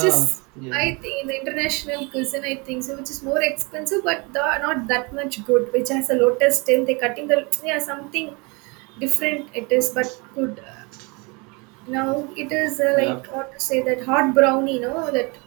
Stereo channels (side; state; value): left; quieter; 29.2 dB